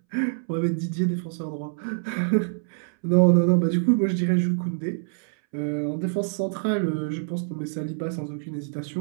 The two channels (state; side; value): silent; left; 61 dB below the other